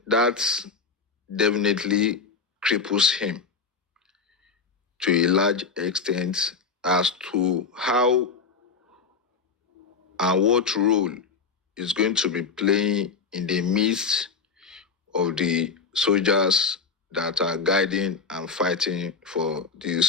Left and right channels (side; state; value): right; quieter; 5.1 dB